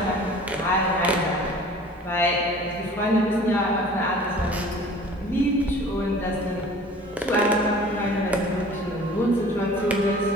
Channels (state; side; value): normal; both; correlation 0.46